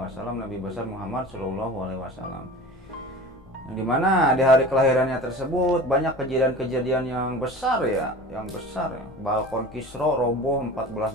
Nabi besar Muhammad SAW. Yang dimana di hari kelahirannya tersebut banyak kejadian-kejadian yang besar ya. Balkon Kisra roboh,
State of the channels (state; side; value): noise; left; rumble, 24 dB below the sound